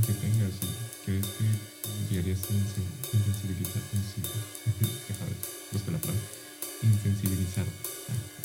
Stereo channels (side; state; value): both; identical; correlation 1.00